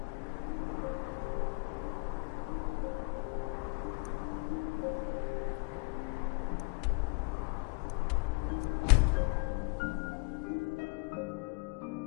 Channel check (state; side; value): quieter; right; 33.4 dB